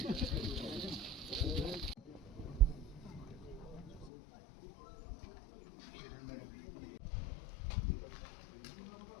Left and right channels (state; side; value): drops out; right; at 4.1 s